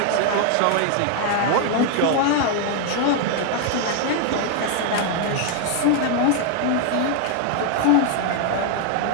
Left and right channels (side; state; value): both; different; correlation 0.00